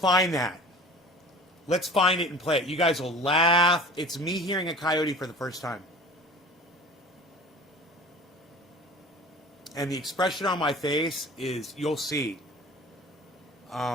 that. Let's find it and play it. You guys will laugh. It's me hearing a coyote for the first time. And the expression on my face is, you'll see.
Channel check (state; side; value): normal; both; correlation 0.42